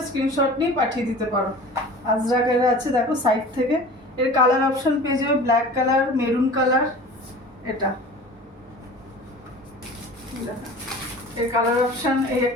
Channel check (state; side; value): normal; both; correlation 0.40